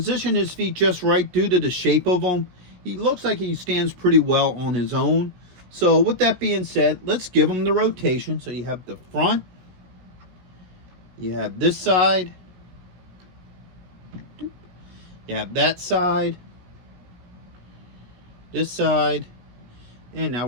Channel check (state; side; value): late; left; 17 ms